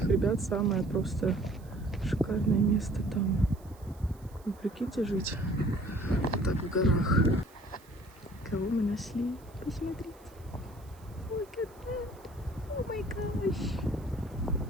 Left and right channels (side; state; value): right; noise; hiss, 27 dB below the sound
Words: ребят самое просто шикарное место там. Вы прикиньте жить вот так в горах. Кого мы нашли? Посмотрите. Look at that. Oh my gosh.